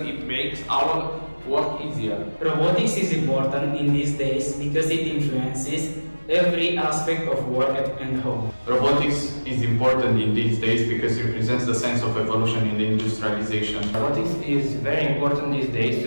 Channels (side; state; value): both; inverted; correlation -1.00